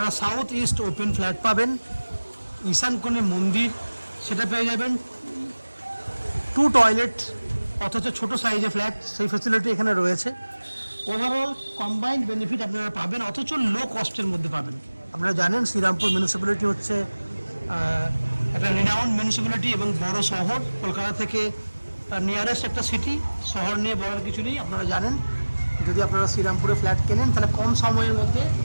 সাউথ ইস্ট ওপেন ফ্ল্যাট পাবেন, ঈশান কোণে মন্দির সেটা পেয়ে যাবেন, 2 টয়লেট অথচ ছোট সাইজের ফ্ল্যাট, সেই ফ্যাসিলিটি এখানে রয়েছে। ওভারঅল কম্বাইন্ড বেনিফিট আপনারা পাবেন, অথচ লো কস্টের মধ্যে পাবেন। আপনারা জানেন শ্রীরামপুর মিউনিসিপ্যালিটি হচ্ছে একটা রিনাউন্ড মিউনিসিপ্যালিটি এবং বড় শহর, কলকাতা থেকে নিয়ারেস্ট একটা সিটি। শহর নিয়ে বলার কিছু নেই, আপনারা জানেন। যদি আপনারা শ্রীরামপুরে ফ্ল্যাট কেনেন তাহলে কম সময়ের মধ্যে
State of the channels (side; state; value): both; inverted; correlation -1.00